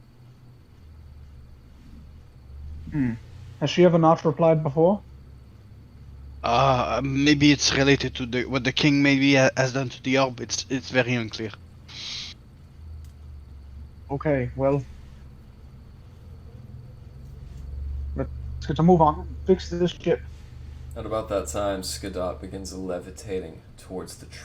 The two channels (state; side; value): identical; both; correlation 1.00